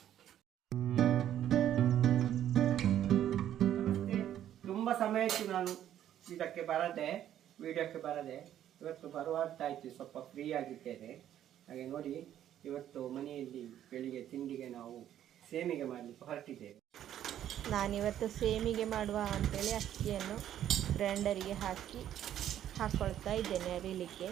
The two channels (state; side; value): quieter; left; 11.1 dB